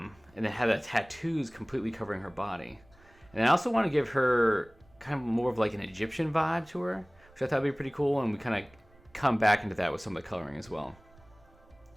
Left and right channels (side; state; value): right; noise; rumble, 27 dB below the sound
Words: then have the tattoos completely covering her body. And I also want to give her kind of more of like an Egyptian vibe to her, which I thought would be pretty cool, and we kind of come back into that with some of the coloring as well.